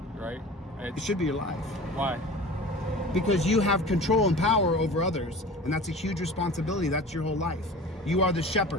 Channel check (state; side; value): normal; both; correlation 0.38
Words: right? It should be your life. Why? Because you have control and power over others, and that's a huge responsibility. That's your whole life. You are the